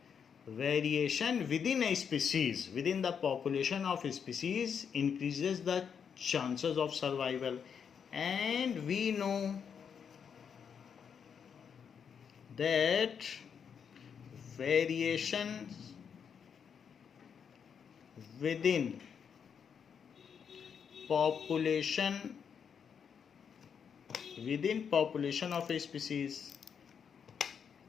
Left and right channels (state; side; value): quieter; right; 7.1 dB